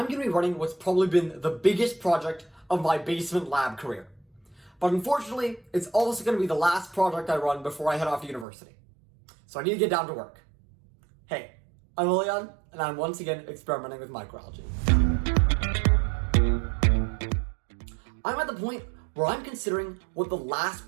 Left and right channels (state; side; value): drops out; left; at 8.5 s